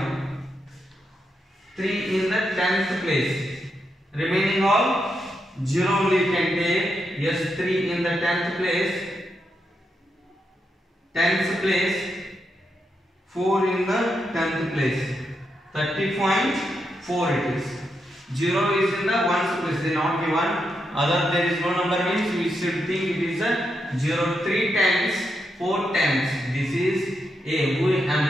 3 in the 10th place. Remaining all 0 only can take. Yes, 3 in the 10th place. 10th place. 4 in the 10th place. 30.4 it is. 0 is in the 1's place. They not given. Other there is no number means we should think it is a 0. 3 times 4 times. This is A. Who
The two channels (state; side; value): normal; both; correlation 0.83